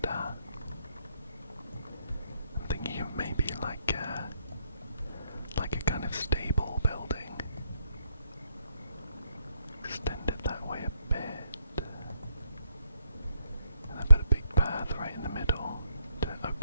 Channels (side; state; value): both; inverted; correlation -0.73